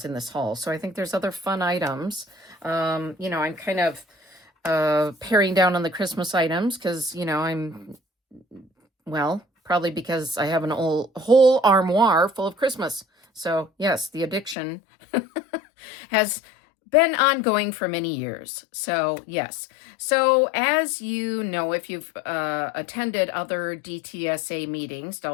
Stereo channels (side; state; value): right; drops out; at 14.6 s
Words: in this haul, so I think there's other fun items. I'm kind of paring down on the Christmas items because probably because I have an whole armoire full of Christmas. So yes, the addiction has been ongoing for many years. So yes. So as you know, if you've attended other DTSA meetings,